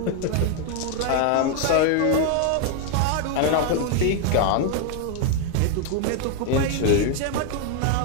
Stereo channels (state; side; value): different; both; correlation 0.00